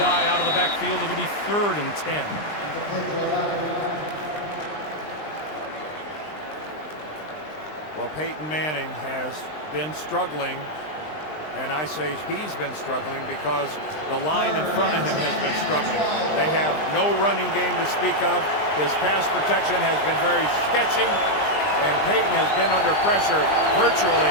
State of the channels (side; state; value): right; late; 20 ms